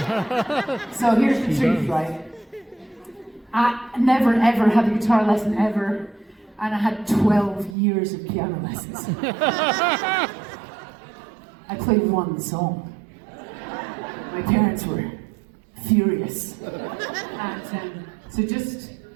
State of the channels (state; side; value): drops out; left; at 7.8 s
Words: So here's the truth, right? I never ever had a guitar lesson ever, and I had 12 years of piano lessons. I played one song. My parents were furious. And so just